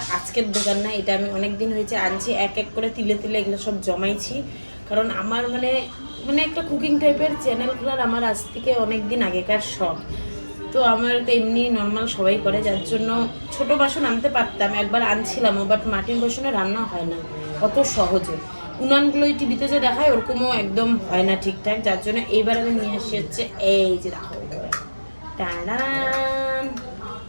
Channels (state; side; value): inverted; both; correlation -1.00